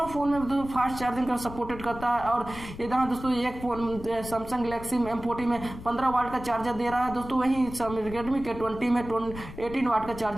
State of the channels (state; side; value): noise; left; rumble, 13 dB below the sound